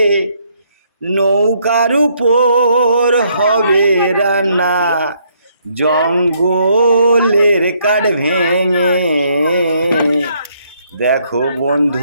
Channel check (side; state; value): both; inverted; correlation -0.70